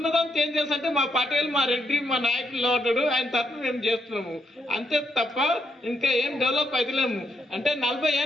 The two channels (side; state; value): both; normal; correlation 0.77